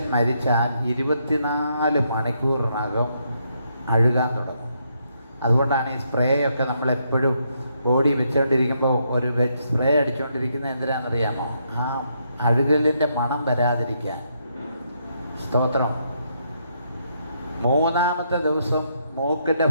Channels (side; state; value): both; inverted; correlation -0.76